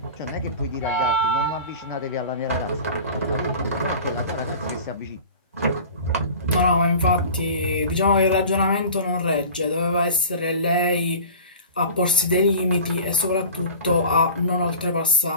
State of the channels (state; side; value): inverted; both; correlation -0.40